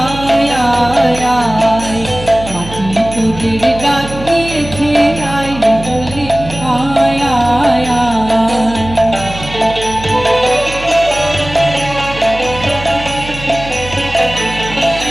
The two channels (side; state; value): right; noise; hum, 12 dB below the sound